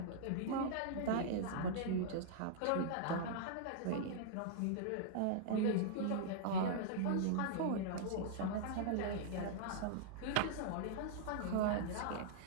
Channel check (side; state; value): both; different; correlation -0.01